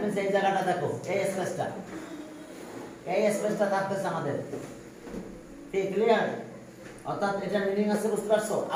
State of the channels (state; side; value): identical; both; correlation 1.00